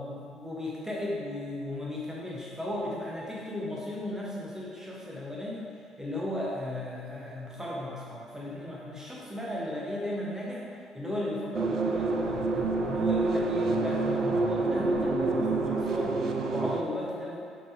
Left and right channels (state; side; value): normal; both; correlation 0.70